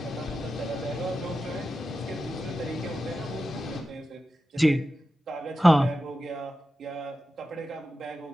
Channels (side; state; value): both; normal; correlation 0.91